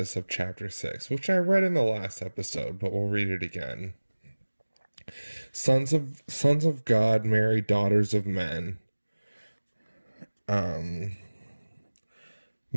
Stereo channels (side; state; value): both; inverted; correlation -1.00